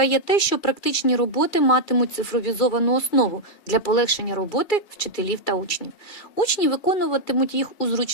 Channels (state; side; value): late; right; 2.3 ms